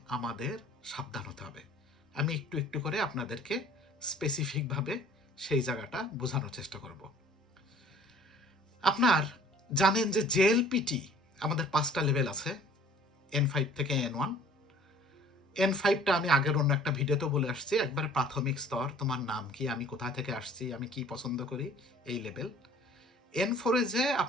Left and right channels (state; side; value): normal; both; correlation 0.51